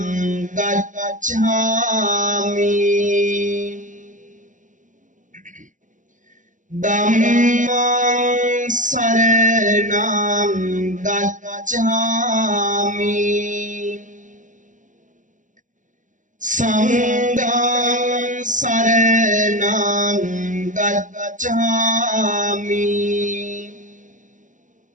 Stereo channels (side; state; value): left; late; 0.37 ms